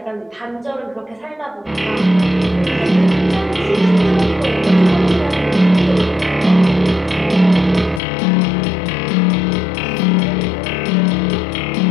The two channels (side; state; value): right; drops out; at 8.0 s